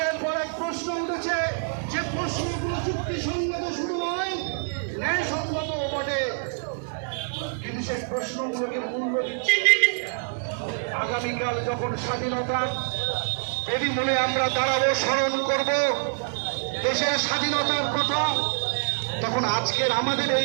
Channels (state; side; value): silent; left; digital silence